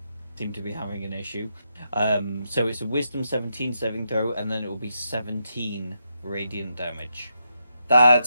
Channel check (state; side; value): inverted; both; correlation -0.83